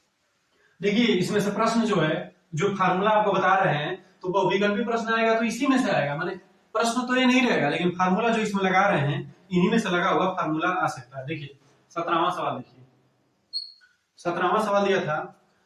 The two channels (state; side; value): identical; both; correlation 1.00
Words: देखिए इसमें से प्रश्न जो है, जो फार्मूला आपको बता रहे हैं, तो बहुविकल्पी प्रश्न आएगा तो इसी में से आएगा। माने प्रश्न तो ये नहीं रहेगा, लेकिन फार्मूला जो इसमें लगा रहे हैं, इन्हीं में से लगा हुआ फार्मूला आ सकता है। देखिए 17वां सवाल देखिए, 17वां सवाल दिया था